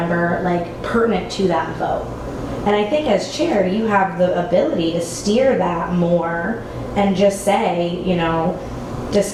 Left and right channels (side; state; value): both; identical; correlation 1.00